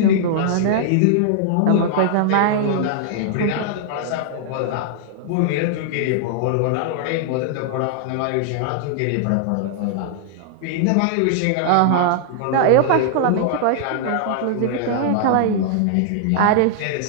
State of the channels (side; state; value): both; different; correlation -0.01